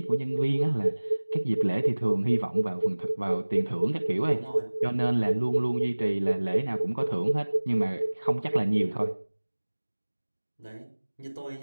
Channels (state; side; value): inverted; both; correlation -1.00